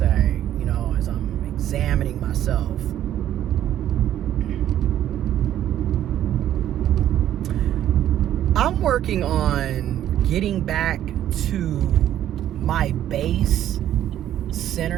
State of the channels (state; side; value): quieter; left; 11.6 dB